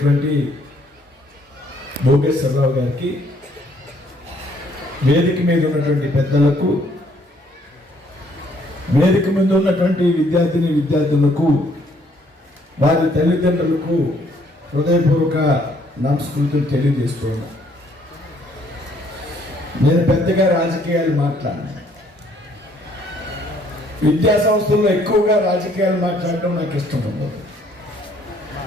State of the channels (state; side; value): normal; both; correlation 0.65